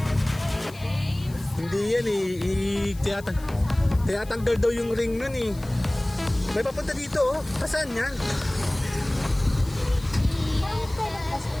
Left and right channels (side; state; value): left; noise; hiss, 21 dB below the sound